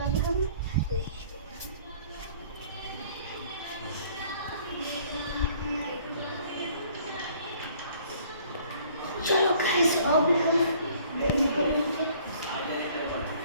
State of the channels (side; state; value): both; inverted; correlation -0.57